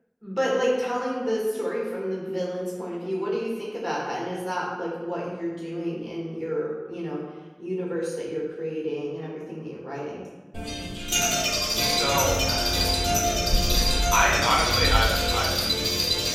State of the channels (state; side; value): identical; both; correlation 1.00